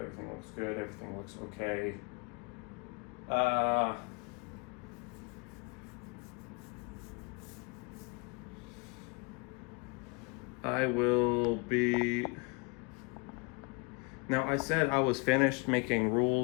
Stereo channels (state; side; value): quieter; right; 29.9 dB